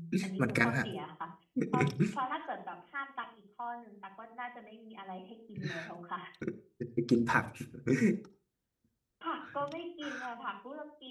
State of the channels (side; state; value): both; identical; correlation 1.00